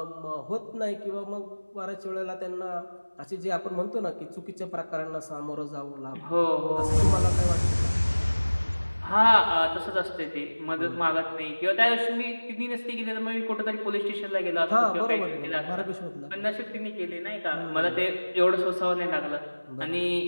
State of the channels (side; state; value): both; inverted; correlation -1.00